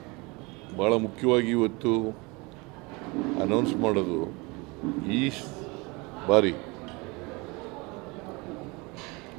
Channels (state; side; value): quieter; left; 26.4 dB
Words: ಬಹಳ ಮುಖ್ಯವಾಗಿ ಇವತ್ತು ಅನೌನ್ಸ್ ಮಾಡೋದು, ಈ ಬಾರಿ